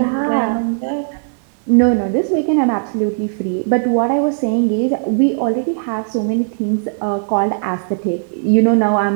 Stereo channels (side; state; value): left; silent; digital silence